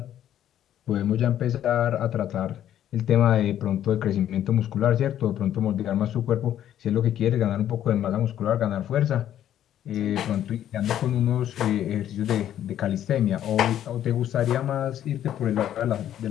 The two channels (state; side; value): quieter; right; 11.1 dB